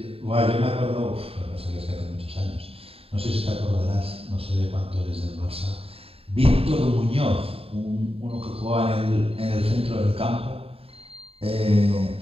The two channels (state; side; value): late; left; 0.28 ms